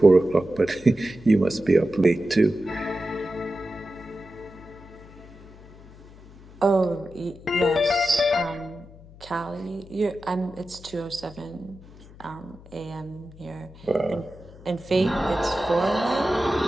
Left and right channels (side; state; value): left; noise; hum, 21 dB below the sound